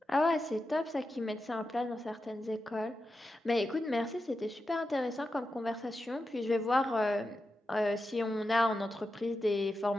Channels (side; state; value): both; normal; correlation 0.90